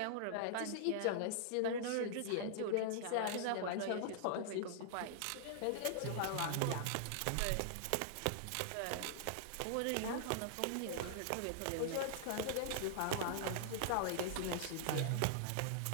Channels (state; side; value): different; both; correlation -0.01